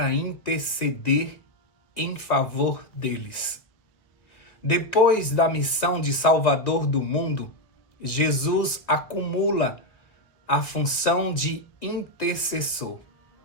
interceder em favor deles. Depois da missão de Salvador do mundo, Jesus acumula a função de intercessor.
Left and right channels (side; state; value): right; late; 1.9 ms